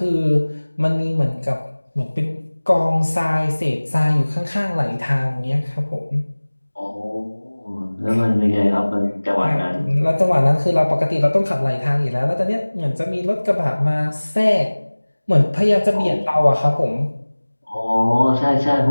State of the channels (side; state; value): both; inverted; correlation -1.00